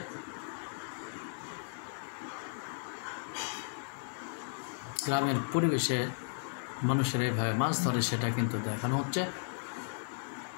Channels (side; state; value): right; silent; digital silence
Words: গ্রামের পরিবেশে মানুষের এইভাবে মাছ ধরে সেটা কিন্তু দেখানো হচ্ছে।